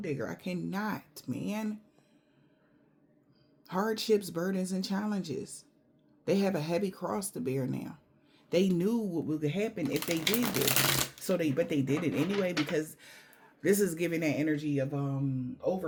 digger. I cannot, man. Hardships, burdens, and challenges. They have a heavy cross to bear now. They knew what would happen if they did this. But they did it anyway, because this is giving that energy of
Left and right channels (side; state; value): both; identical; correlation 1.00